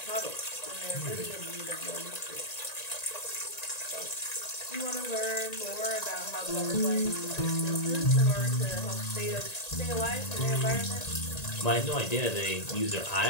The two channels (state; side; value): late; right; 1.9 ms